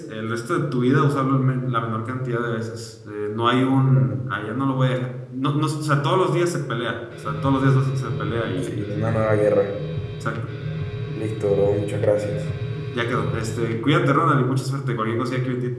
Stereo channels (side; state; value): both; identical; correlation 1.00